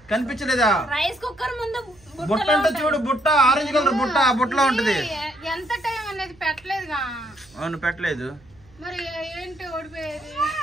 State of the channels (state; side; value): noise; right; hum, 28 dB below the sound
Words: కనిపించలేదా? రైస్ కుక్కర్ ముందు బుట్ట అంటే చూడు, బుట్ట ఆరెంజ్ కలర్ బుట్ట, ఆ బుట్టలో ఉంటది. ఎంత టైం అనేది పెట్టలేదుగా. అవును పెట్టలేదు. మరి ఏంటి ఓడిపోయేది?